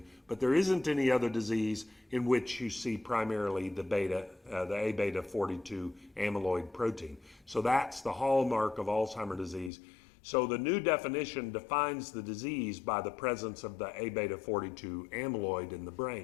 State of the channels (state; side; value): drops out; right; at 9.7 s